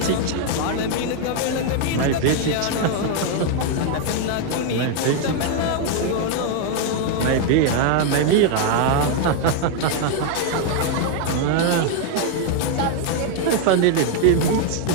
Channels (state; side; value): different; both; correlation 0.00